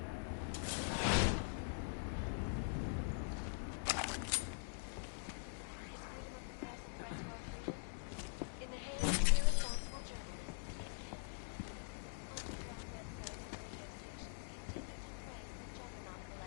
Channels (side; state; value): right; silent; digital silence